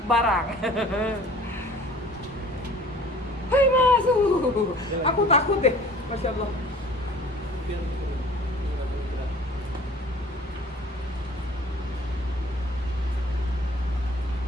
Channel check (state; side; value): normal; both; correlation 0.48